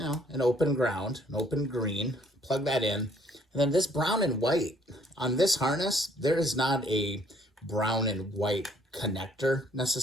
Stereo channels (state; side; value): normal; both; correlation 0.63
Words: know, an open ground, an open green, plug that in. And then this brown and white, on this harness, there is not a brown and white connector